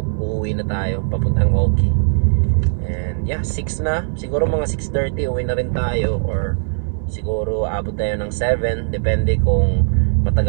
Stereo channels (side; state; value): left; silent; 63 dB below the other